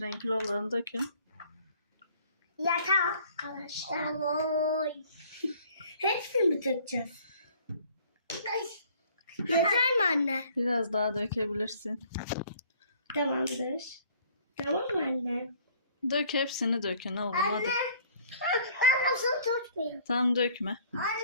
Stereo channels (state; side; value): inverted; both; correlation -0.56